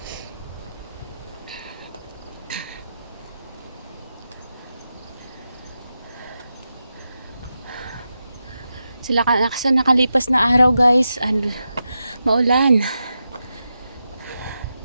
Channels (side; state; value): both; inverted; correlation -0.89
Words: Sila sa nakalipas na araw, guys, and maulan.